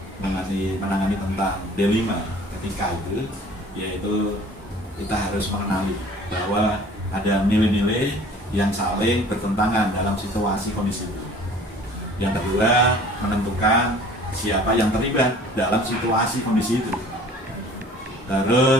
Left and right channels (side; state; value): both; normal; correlation 0.49